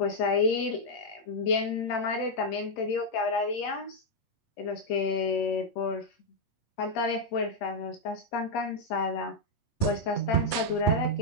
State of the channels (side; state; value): right; late; 8.4 ms